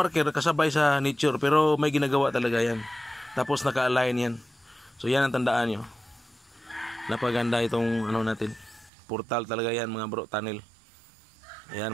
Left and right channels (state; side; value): drops out; left; at 8.9 s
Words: kasabay sa nature pero may ginagawa talaga yan. Tapos naka-align yan. So yan ang tandaan nyo. Napaganda itong ano natin. Portal talaga yan mga bro, tunnel. Ayan